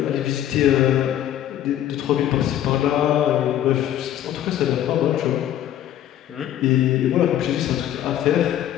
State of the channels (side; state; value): right; quieter; 11.5 dB